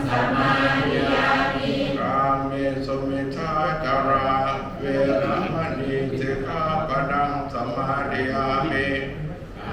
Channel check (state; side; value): identical; both; correlation 1.00